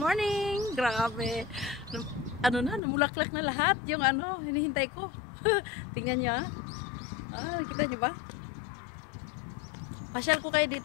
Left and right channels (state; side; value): drops out; right; at 2.8 s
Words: Grabe. Ano na, namulaklak na lahat yung ano, hinihintay ko. Tingnan nyo ah. Nakita nyo ba? Pasyal ko kayo